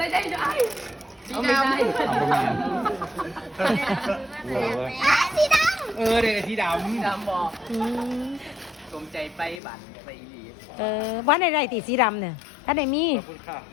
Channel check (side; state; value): right; drops out; at 9.6 s